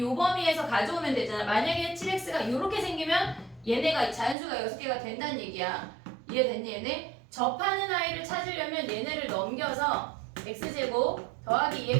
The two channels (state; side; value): drops out; left; at 4.4 s